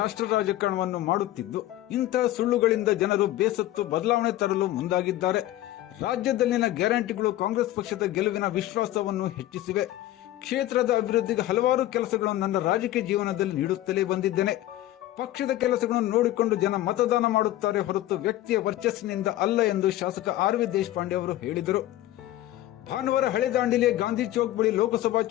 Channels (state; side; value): quieter; right; 14.6 dB